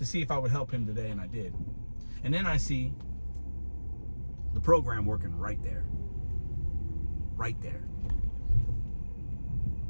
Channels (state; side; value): inverted; both; correlation -1.00